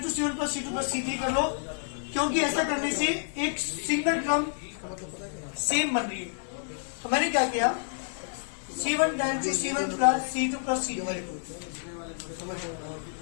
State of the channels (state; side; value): silent; right; digital silence